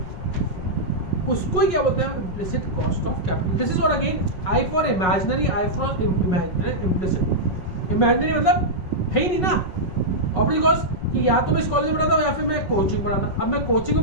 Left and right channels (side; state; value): right; late; 5.4 ms